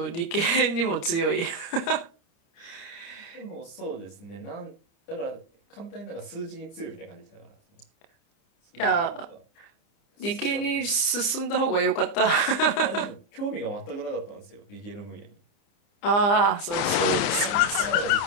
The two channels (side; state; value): right; late; 29 ms